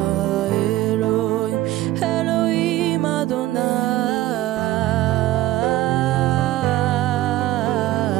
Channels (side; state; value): left; quieter; 15.6 dB